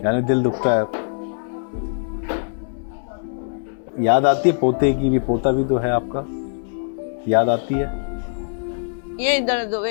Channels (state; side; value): silent; right; 64 dB below the other